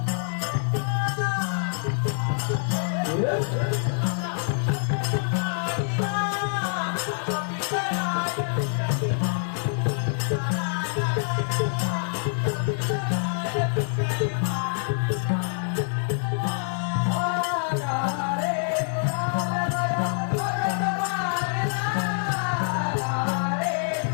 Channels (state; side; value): silent; right; 61 dB below the other